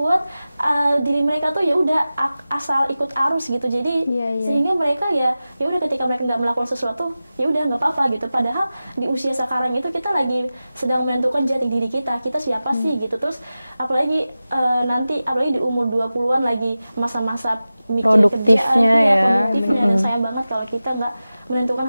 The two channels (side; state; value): both; inverted; correlation -0.95